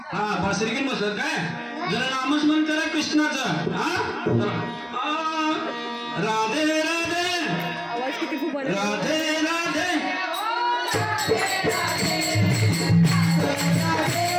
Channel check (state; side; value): identical; both; correlation 1.00